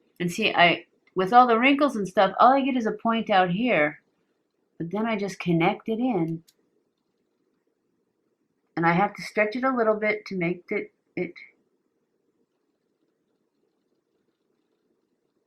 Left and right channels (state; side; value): identical; both; correlation 1.00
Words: And see, with all the wrinkles and stuff, all I get is a point out here, but then I just connect it in, and I have to stretch it a little bit to make it